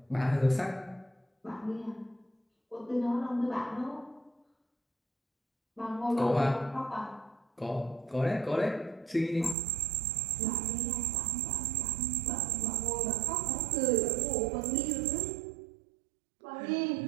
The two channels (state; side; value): drops out; left; at 9.6 s